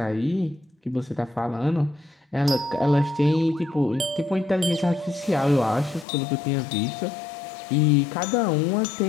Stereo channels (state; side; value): drops out; right; at 6.1 s